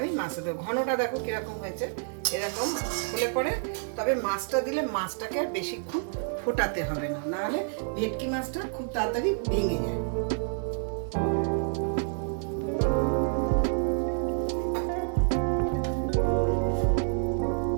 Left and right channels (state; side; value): silent; left; digital silence